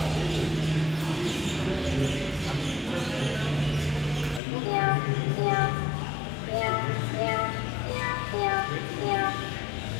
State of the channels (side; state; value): right; drops out; at 4.4 s